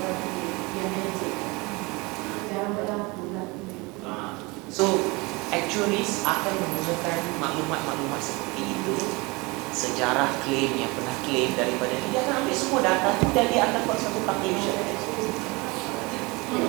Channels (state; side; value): quieter; left; 25.7 dB